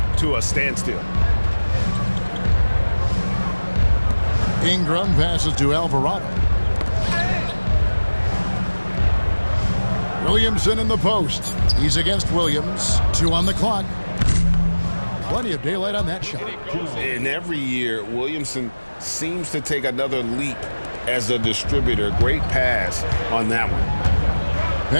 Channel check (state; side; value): inverted; both; correlation -1.00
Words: to a standstill. Ingram passes to Alvarado. Williamson in the post. He's against Williams. 2 on the clock. Plenty of daylight on that shot. And every year, Williamson seems to take another leap as a distributor. Great pass on that one.